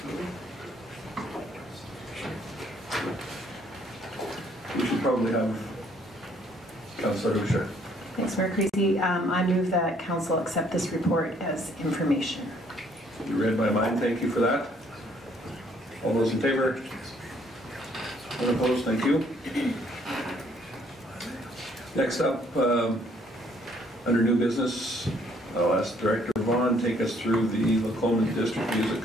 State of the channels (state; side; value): normal; both; correlation 0.64